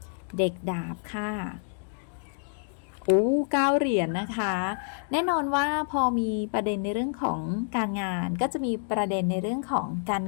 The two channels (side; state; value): right; silent; digital silence